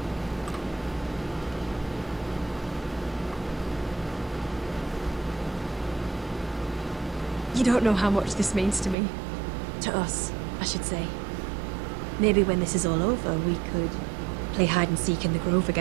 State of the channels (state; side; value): drops out; left; at 9.0 s